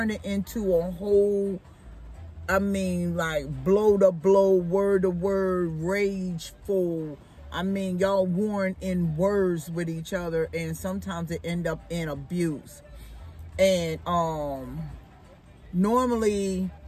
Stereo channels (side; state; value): both; identical; correlation 1.00